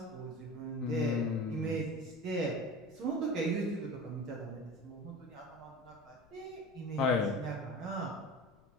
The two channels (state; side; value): noise; left; rumble, 28 dB below the sound